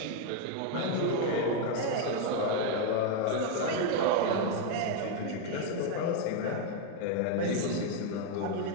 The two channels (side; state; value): both; different; correlation 0.01